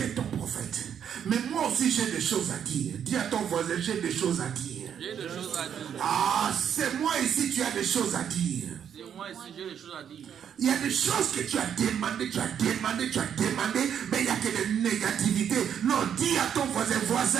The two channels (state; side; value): quieter; left; 8.6 dB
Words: ton prophète. Mais moi aussi j'ai des choses à dire. Dis à ton voisin, j'ai des choses à dire. J'ai des choses à dire. Ah, c'est moi ici, tu as des choses à dire. C'est moi ici, j'ai des choses à dire. Il y a des choses que tu as demandé, mais il n'y a que des négativités. Non, dis à ton